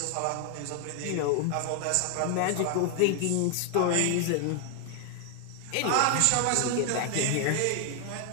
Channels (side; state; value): both; different; correlation 0.00